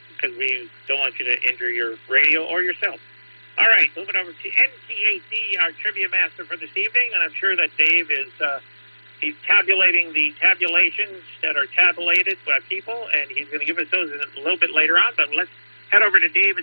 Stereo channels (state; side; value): inverted; both; correlation -1.00